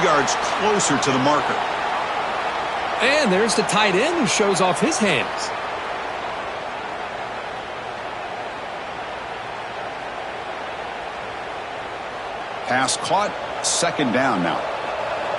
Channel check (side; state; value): both; identical; correlation 1.00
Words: yards closer to the marker. And there's the tight end who shows off his hands. Pass caught. Second down now.